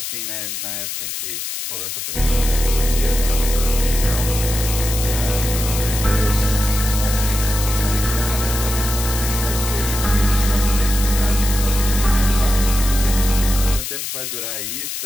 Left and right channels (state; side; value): noise; left; hiss, 5 dB below the sound